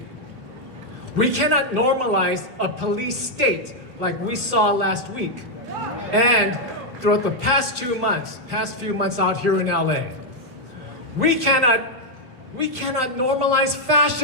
We cannot normalize a police state like we saw last week and throughout the past few months out here in LA. We cannot normalize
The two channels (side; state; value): left; late; 2.9 ms